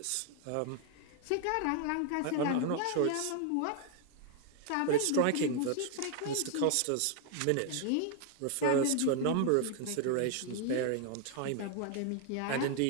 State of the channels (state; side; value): different; both; correlation 0.00